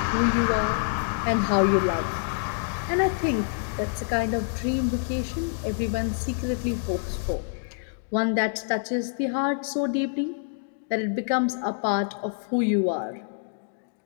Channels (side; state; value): right; silent; digital silence